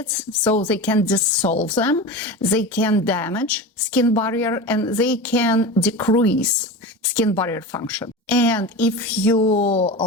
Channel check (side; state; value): both; normal; correlation 0.27